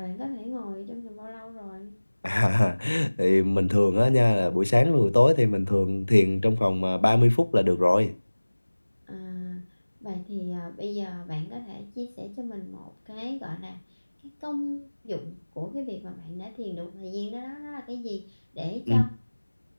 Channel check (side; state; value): both; inverted; correlation -1.00